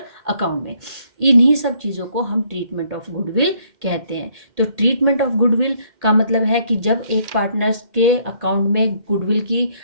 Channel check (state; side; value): late; left; 1.8 ms